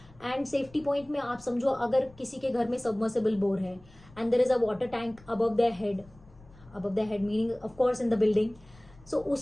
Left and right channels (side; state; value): left; noise; rumble, 25 dB below the sound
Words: And safety point में आप समझो अगर किसी के घर में सबमर्सिबल बोर है and there is a water tank above the head meaning of course in the building, so